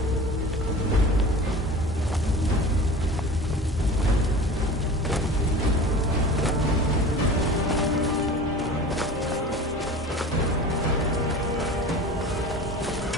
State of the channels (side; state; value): both; normal; correlation 0.37